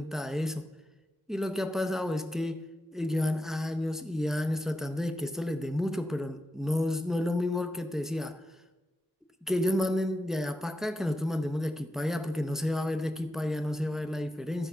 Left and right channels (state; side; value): normal; both; correlation 0.89